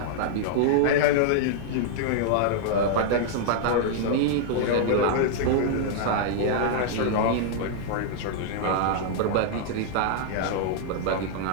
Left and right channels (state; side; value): different; both; correlation -0.01